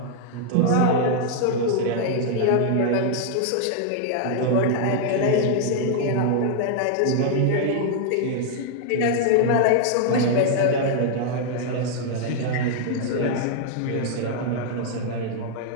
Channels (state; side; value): different; both; correlation 0.00